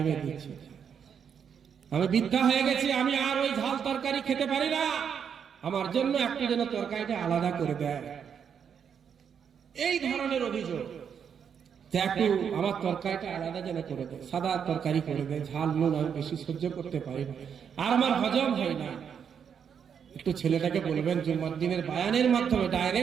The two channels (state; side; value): quieter; left; 7.5 dB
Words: দিচ্ছে, আমি বৃদ্ধা হয়ে গেছি, আমি আর ওই ঝাল তরকারি খেতে পারি না, আমার জন্য একটু যেন তরকারিটা আলাদা করে দেয়। এই ধরনের অভিযোগ যে একটু আমার তরকারিটা আলাদা যেন করে দেয়, সাদা তরকারি করে দেয়, ঝাল নুন আমি বেশি সহ্য করতে পারি না, আর আমার হজম হয় না। একটু ছেলেটাকে বলবেন জুম্মার দিনের বায়ানের মাধ্যমে,